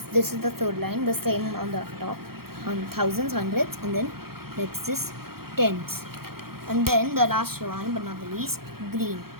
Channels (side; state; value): left; late; 0.94 ms